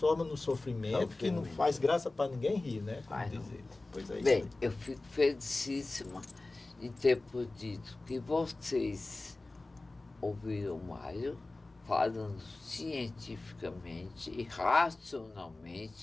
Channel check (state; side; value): quieter; right; 3.1 dB